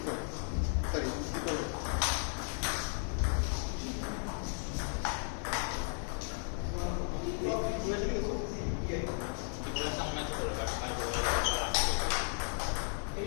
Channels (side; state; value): right; silent; 54 dB below the other